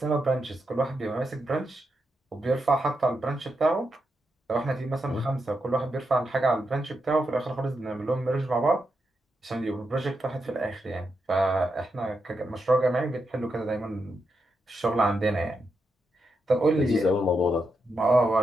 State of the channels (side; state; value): both; normal; correlation 0.85